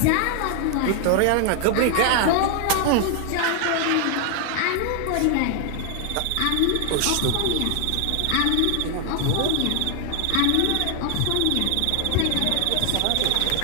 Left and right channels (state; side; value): different; both; correlation 0.00